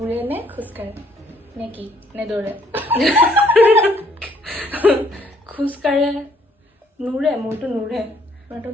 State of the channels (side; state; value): both; normal; correlation 0.65